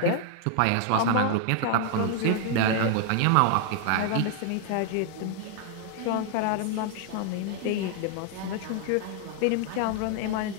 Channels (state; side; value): different; both; correlation 0.00